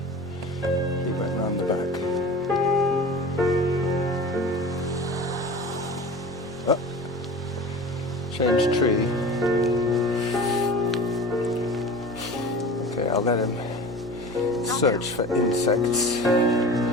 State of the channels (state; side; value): normal; both; correlation 0.36